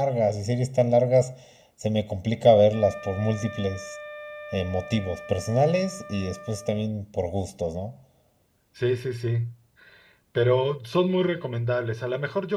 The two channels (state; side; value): identical; both; correlation 1.00